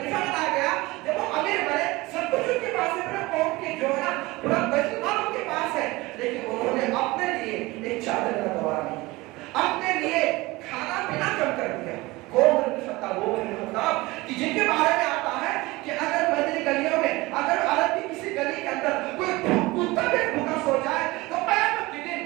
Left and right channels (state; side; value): quieter; left; 21.3 dB